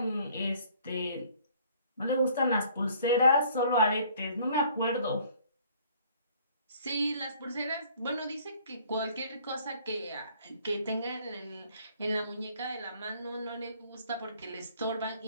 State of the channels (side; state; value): both; inverted; correlation -0.57